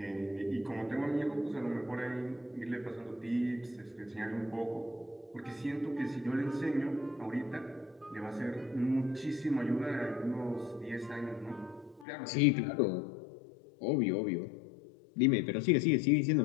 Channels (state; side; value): drops out; right; at 12.1 s